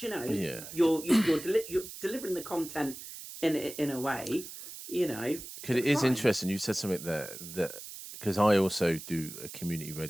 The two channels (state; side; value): noise; right; hiss, 12 dB below the sound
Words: delivering the content in a way, you know, Because it is fine. interesting. You said something there that because I also do a community